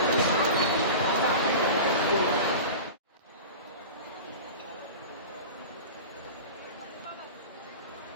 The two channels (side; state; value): both; inverted; correlation -0.32